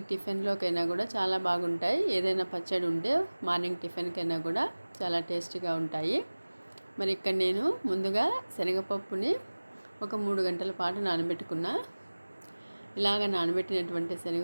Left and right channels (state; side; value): inverted; both; correlation -1.00